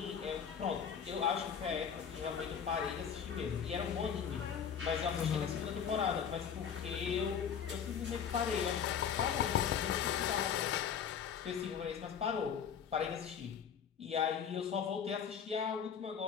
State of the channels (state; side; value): quieter; right; 7.6 dB